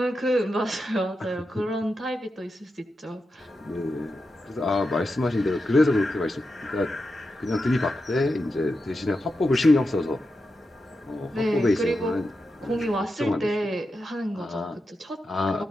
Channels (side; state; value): both; normal; correlation 0.89